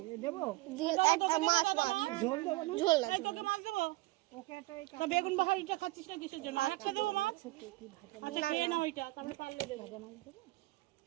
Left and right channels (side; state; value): left; quieter; 20.9 dB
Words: মাছ ঝোল না। বেগুন বাহারিটা খাচ্ছিস না কিসের জন্য? একশো দেবো মাছ। আচ্ছা খেয়ে নাও ওইটা, তারপরে পারলে দেবো।